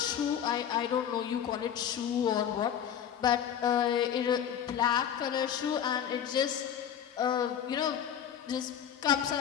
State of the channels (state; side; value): quieter; right; 9.2 dB